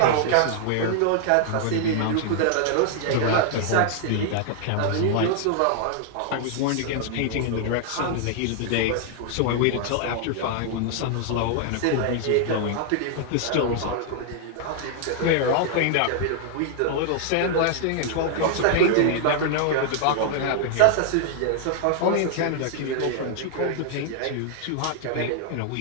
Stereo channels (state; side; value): different; both; correlation 0.00